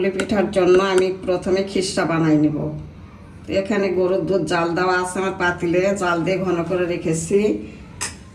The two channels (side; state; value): both; identical; correlation 1.00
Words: পিঠার জন্য আমি প্রথমে খিসা বানাই নিব। তো এখানে গরুর দুধ জাল দেওয়া আছে আমার পাতিলে, জাল দিয়ে ঘন করে রেখেছি।